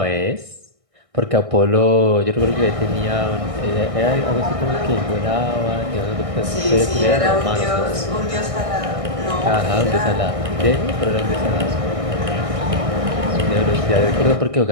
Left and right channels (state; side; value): late; left; 1.6 ms